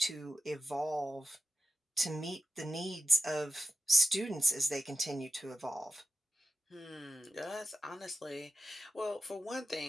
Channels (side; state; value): both; normal; correlation 0.89